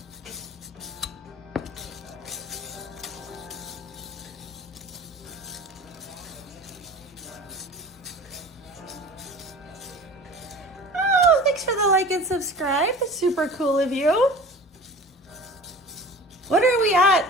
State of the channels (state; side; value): normal; both; correlation 0.41